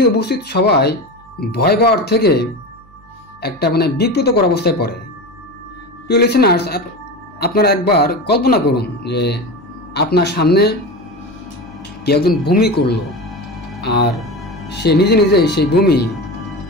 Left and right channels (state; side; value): noise; right; hum, 27 dB below the sound